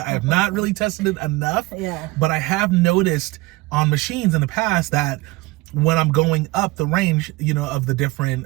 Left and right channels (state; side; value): quieter; left; 20.9 dB